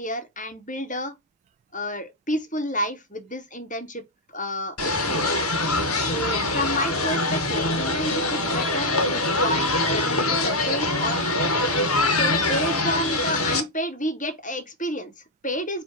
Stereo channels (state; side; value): normal; both; correlation 0.01